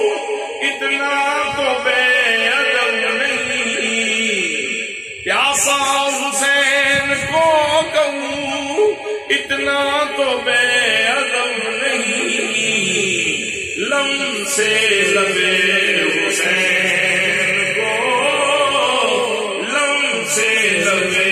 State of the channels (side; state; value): both; identical; correlation 1.00